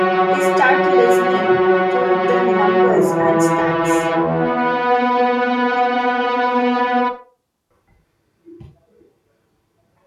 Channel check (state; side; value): identical; both; correlation 1.00